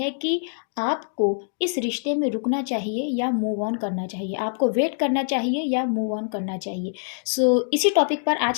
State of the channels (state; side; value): silent; right; digital silence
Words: कि आपको इस रिश्ते में रुकना चाहिए या मूव ऑन करना चाहिए, आपको वेट करना चाहिए या मूव ऑन करना चाहिए। इसी टॉपिक पर